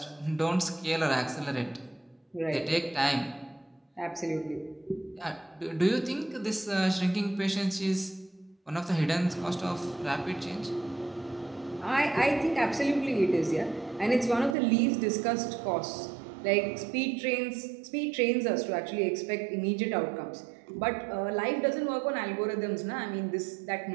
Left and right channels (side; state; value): left; drops out; at 14.6 s